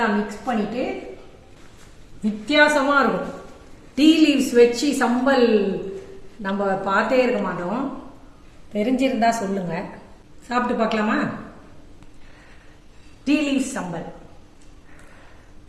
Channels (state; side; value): identical; both; correlation 1.00